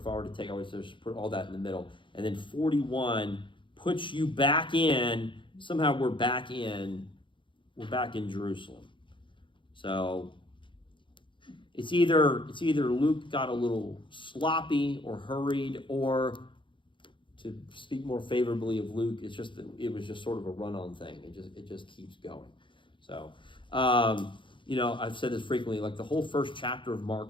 take, I would just put all that in the middle, and then 41 puts you back in. Somehow we're back in Jerusalem. So it's either Luke got a little sloppy or hurried, or, to speak more favorably of Luke, it was just sort of a run-on thing. It just keeps going. So, I've said this frequently. Like, the whole first chapter of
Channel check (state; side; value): late; right; 0.24 ms